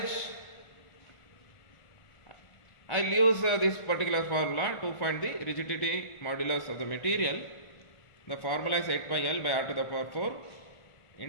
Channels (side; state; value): right; late; 1.5 ms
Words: I will use this particular formula to find the rigidity modulus of the material. The formula is 8 by L by R to the power 4